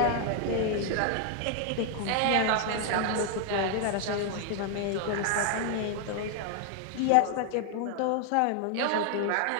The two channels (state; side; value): different; both; correlation 0.00